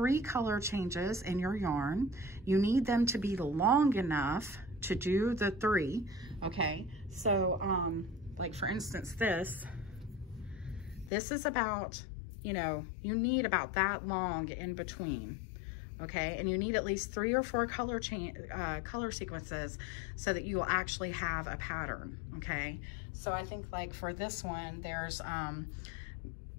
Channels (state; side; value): drops out; right; at 11.1 s